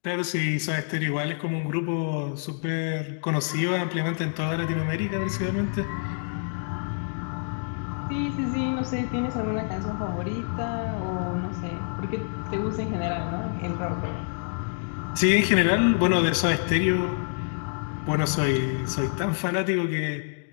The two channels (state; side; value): silent; right; digital silence